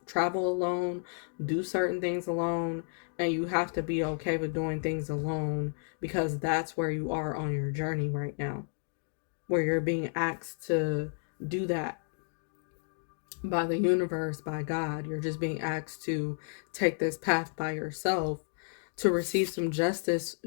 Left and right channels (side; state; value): right; silent; digital silence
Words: alone, do certain things alone, and you have to be okay with doing things alone because that's where you are on your journey right now, where you're being asked to do that by the universe, by God. You're just being asked to take this path by yourself to receive some justice